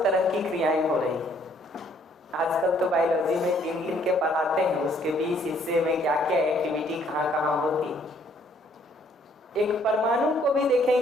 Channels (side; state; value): both; normal; correlation 0.64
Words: तरह की क्रियाएं हो रही है। आजकल तो बायोलॉजी में गिन गिन के पढ़ाते हैं उसके 20 हिस्से में क्या क्या एक्टिविटी कहाँ कहाँ होती। एक परमाणु को भी